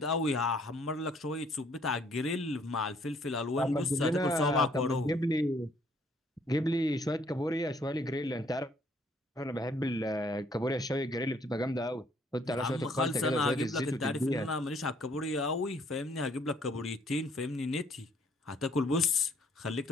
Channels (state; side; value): normal; both; correlation 0.64